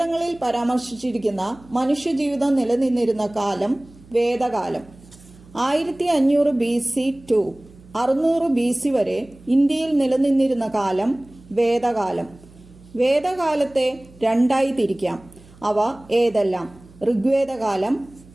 പരാമർശിച്ചിരിക്കുന്ന മനുഷ്യജീവിതം നിലനിന്നിരുന്ന കാലം വേദകാലം. 1500 BC to 600 BC വരെ ഇന്ത്യയിൽ നിലനിന്നിരുന്ന കാലം വേദകാലം. വേദകാലത്തെ രണ്ടായി തിരിക്കാം. അവ ഏതെല്ലാം? ഋഗ്വേദകാലം,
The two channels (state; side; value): noise; right; hum, 24 dB below the sound